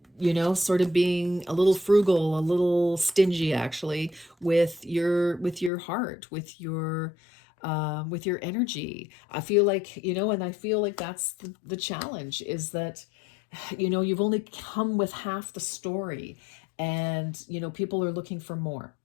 sort of being a little frugal, a little stingy, actually, with your heart, with your energy. I feel like, and I feel like that's the challenge, is that, you've only come with half the story, and, people are looking for more.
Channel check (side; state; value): right; drops out; at 5.7 s